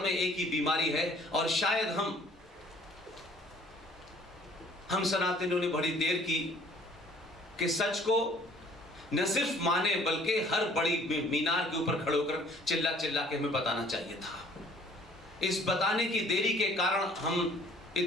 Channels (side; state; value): both; normal; correlation 0.55